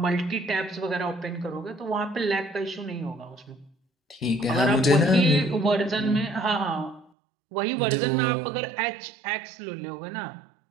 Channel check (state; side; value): drops out; left; at 7.1 s